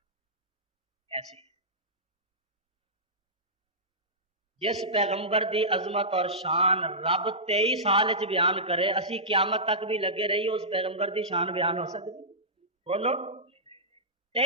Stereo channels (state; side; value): normal; both; correlation -0.16